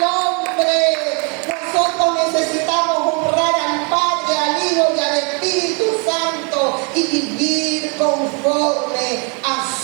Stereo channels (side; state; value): left; quieter; 34.7 dB